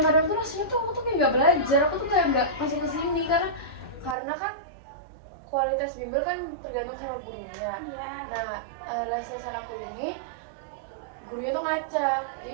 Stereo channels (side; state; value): left; drops out; at 4.2 s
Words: tuh rasanya tuh aku tuh kayak nggak belajar, aku tuh kayak nggak masuk ke sini karena kan kualitas bimbel kan tergantung sama gurunya. Iya. Nah, les-lesan aku ini gurunya tuh ngacak, jadi